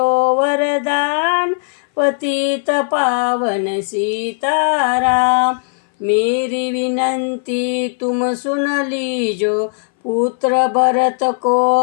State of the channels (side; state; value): right; silent; 61 dB below the other